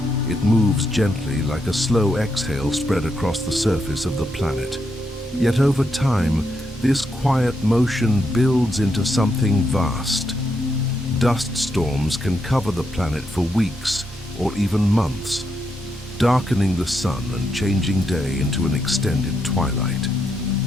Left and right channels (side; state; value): both; normal; correlation 0.81